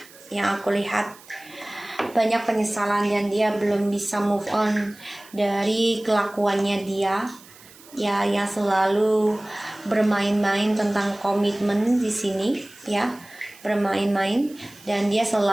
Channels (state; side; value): noise; right; hiss, 22 dB below the sound